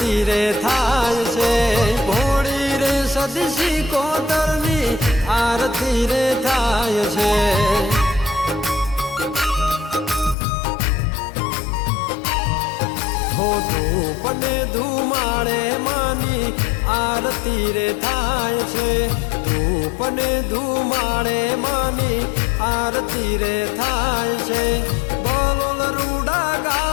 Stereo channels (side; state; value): right; drops out; at 10.4 s